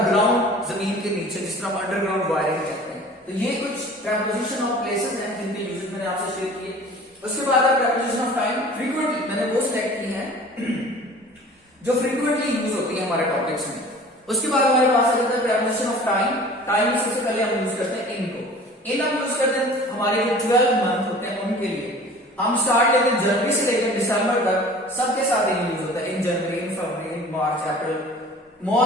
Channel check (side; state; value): both; normal; correlation 0.44